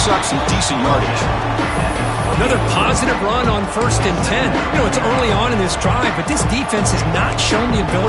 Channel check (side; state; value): both; identical; correlation 1.00